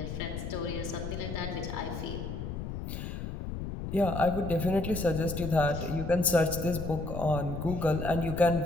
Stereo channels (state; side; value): noise; left; rumble, 6 dB below the sound